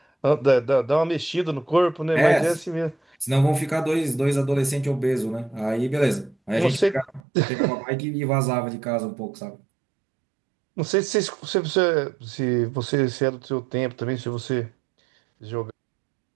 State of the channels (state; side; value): drops out; left; at 7.2 s